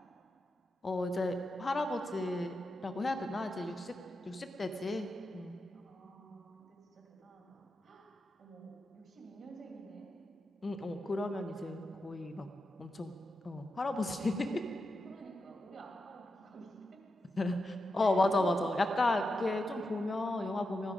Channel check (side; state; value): both; normal; correlation 0.88